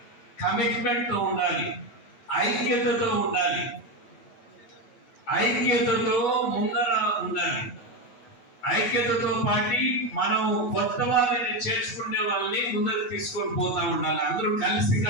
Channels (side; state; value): right; late; 8.2 ms